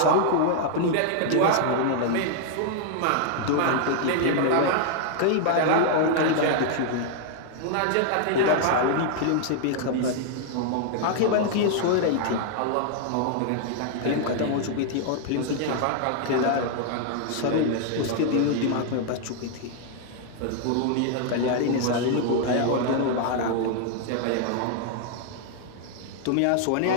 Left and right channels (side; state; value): both; different; correlation 0.00